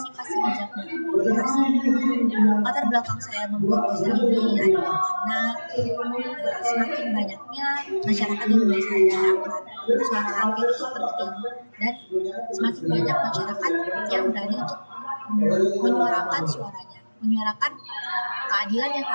bijak dalam komunikasi. Latar belakang saya membuat poster ini adalah karena semakin banyaknya masyarakat yang mulai sadar akan suara angket itu penting, dan semakin banyak masyarakat yang berani untuk menyuarakan suaranya, menyuarakan keadilan yang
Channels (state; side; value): inverted; both; correlation -1.00